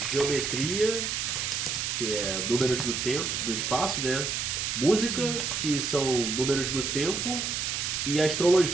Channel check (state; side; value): noise; right; hiss, 1 dB below the sound